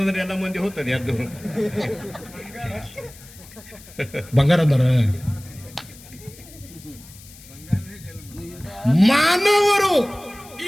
ಎಲ್ಲ ಮಂದಿ ಹೋಗ್ತದೆ ಅದು. ಬಂಗಾರ ಅಂದಾರ. ಮಾನವರು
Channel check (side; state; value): left; noise; hiss, 20 dB below the sound